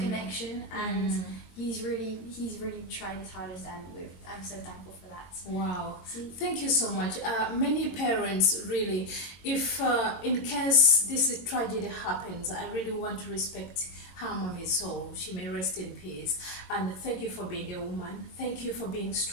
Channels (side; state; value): right; late; 22 ms